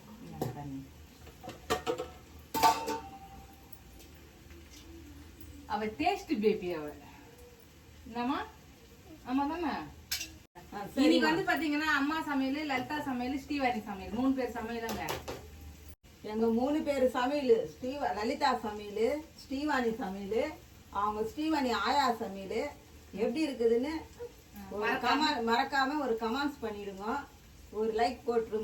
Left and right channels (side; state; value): both; identical; correlation 1.00